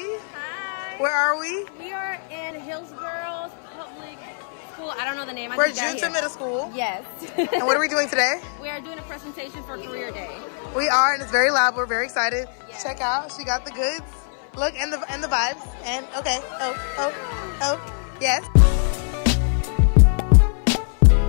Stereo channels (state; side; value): silent; right; 59 dB below the other